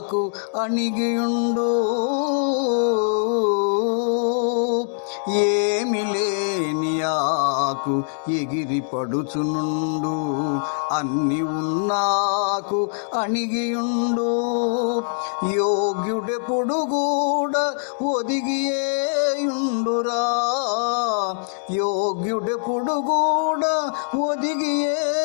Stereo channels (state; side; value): silent; right; digital silence